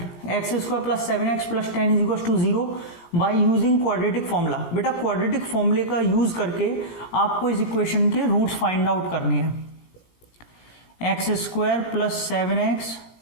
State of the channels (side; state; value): right; late; 17 ms